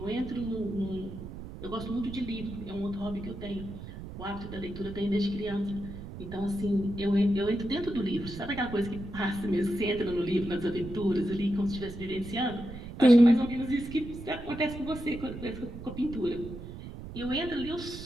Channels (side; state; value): right; noise; rumble, 11 dB below the sound